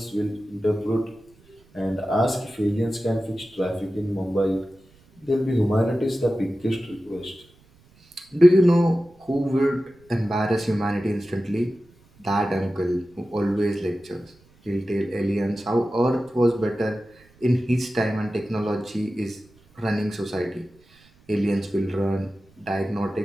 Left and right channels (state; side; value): noise; right; rumble, 30 dB below the sound